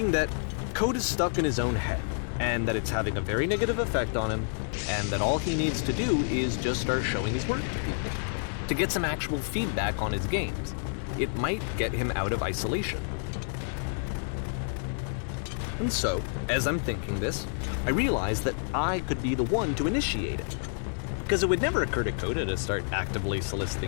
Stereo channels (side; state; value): right; silent; digital silence